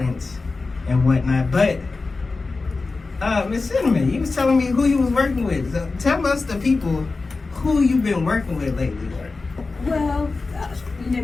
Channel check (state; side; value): quieter; right; 3.8 dB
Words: and whatnot. But, Miss Cynnamyn, you was telling me who you was working with. So tell us, the people, who you've been working with lately. Well, you know